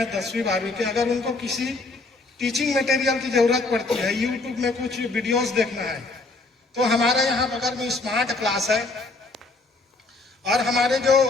10वीं 12वीं के, अगर उनको किसी टीचिंग मटेरियल की जरूरत पड़ती है, यूट्यूब में कुछ वीडियोस देखना है, तो हमारे यहाँ बगल में स्मार्ट क्लास है और हमारे जो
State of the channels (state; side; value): quieter; right; 3.4 dB